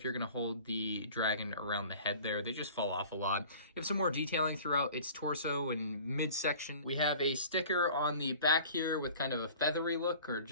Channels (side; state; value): both; inverted; correlation -0.45